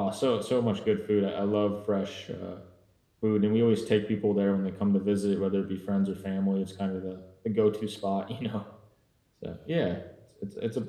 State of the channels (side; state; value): both; identical; correlation 1.00